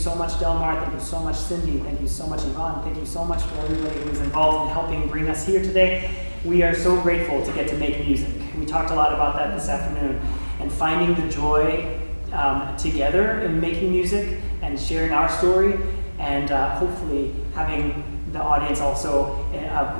much, Delmar. Thank you so much, Cindy. Thank you so much, Yvonne. Thank you so much for everybody who was involved in helping bring us here today. We are so grateful to get to make music. We talked a lot about that this afternoon. And finding the joy together in making music and sharing our story, and hopefully having the audience also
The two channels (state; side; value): inverted; both; correlation -1.00